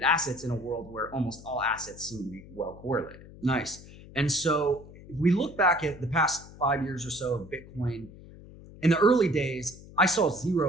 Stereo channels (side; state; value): left; noise; hum, 18 dB below the sound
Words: assets in a world where almost all assets seem to be well correlated. Nice. And so if we look back at the past 5 years or so of Bitcoin, in the early days, I saw